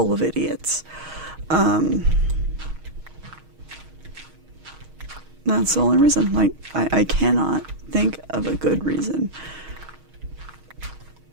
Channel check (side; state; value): left; late; 6.4 ms